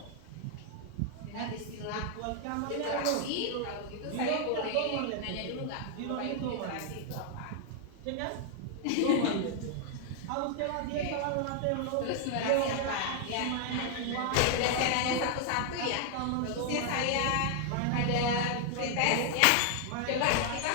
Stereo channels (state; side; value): different; both; correlation 0.00